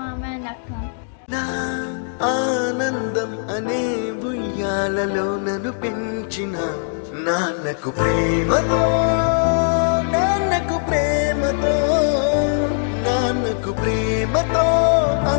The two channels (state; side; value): silent; right; digital silence